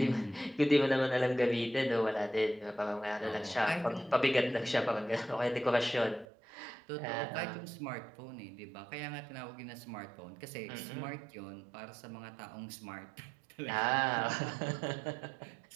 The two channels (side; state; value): left; drops out; at 6.2 s